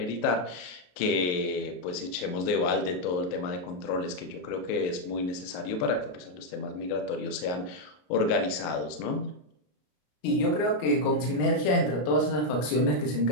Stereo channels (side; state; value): right; late; 33 ms